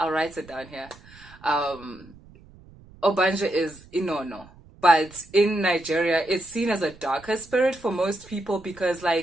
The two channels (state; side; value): noise; right; rumble, 23 dB below the sound